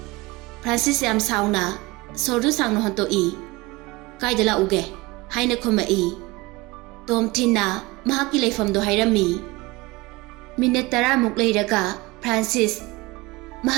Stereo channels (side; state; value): left; quieter; 22.1 dB